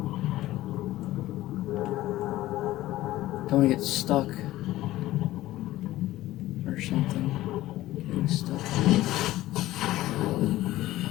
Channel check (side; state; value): right; quieter; 16.0 dB